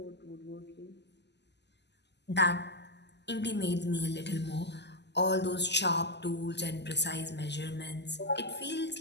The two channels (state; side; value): late; right; 0.50 ms